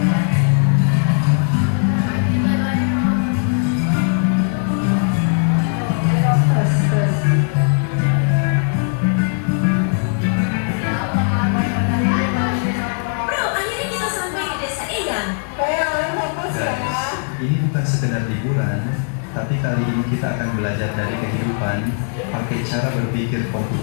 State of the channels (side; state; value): right; silent; 67 dB below the other